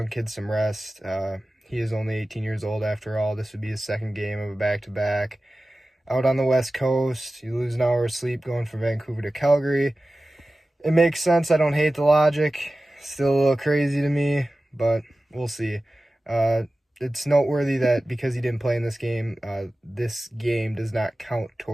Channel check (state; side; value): normal; both; correlation 0.96